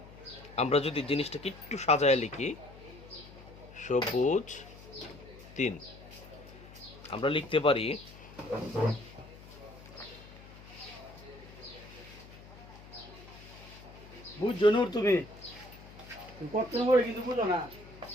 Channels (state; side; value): noise; left; hum, 18 dB below the sound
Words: আমরা যদি জিনিসটাকে একটু সাজায় লিখি, সবুজ 3 আমরা লিখতে পারি বুঝছো নূর, তুমি পড়তে পড়ে কিন্তু বুঝো না।